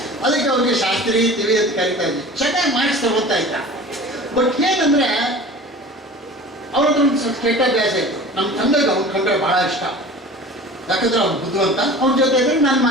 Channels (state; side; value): normal; both; correlation 0.39